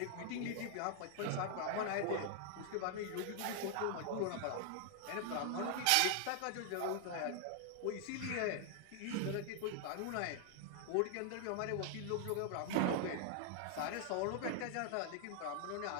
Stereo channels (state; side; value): different; both; correlation 0.00